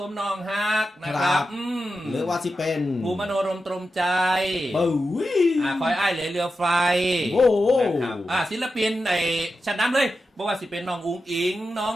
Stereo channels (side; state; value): both; normal; correlation 0.90